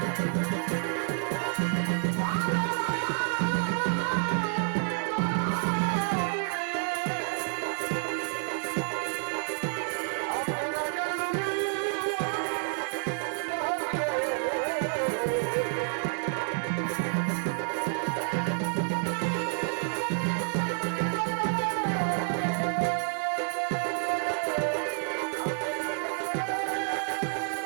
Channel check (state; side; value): silent; left; 58 dB below the other